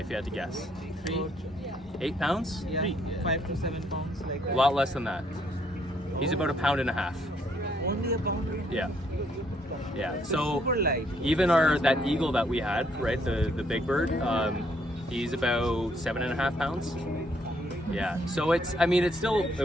you had to guess? 8 pounds? Yeah, 5 to 7 pounds, like A that. lot less than that. He's about 1.5 pounds. Only a pound. Yeah. Yeah. So Super light. even that eagle that we had, right, the big bird, he's about 7.5 pounds. Yeah. So it's still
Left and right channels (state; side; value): normal; both; correlation 0.69